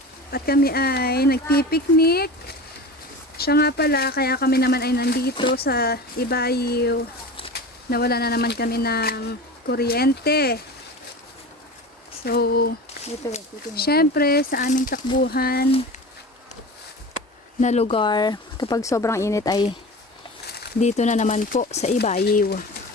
At kami ay nagpipiknik. Siya nga pala, kaya kami naman ay nandito sa Ibayo. Nawala na naman kami ng kuryente. So, syempre sa aming takbuhan na lugar, kapag sobrang init ay dito na naman po sa Ibayo.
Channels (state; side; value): normal; both; correlation 0.33